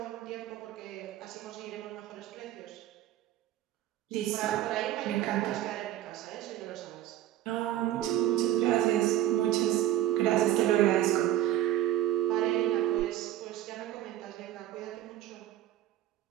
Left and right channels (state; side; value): quieter; left; 13.2 dB